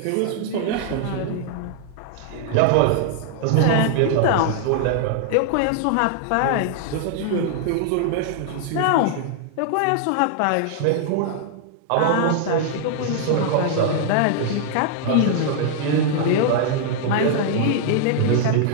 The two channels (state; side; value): different; both; correlation 0.00